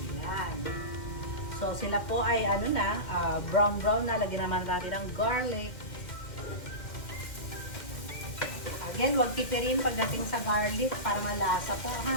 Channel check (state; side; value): late; right; 2.1 ms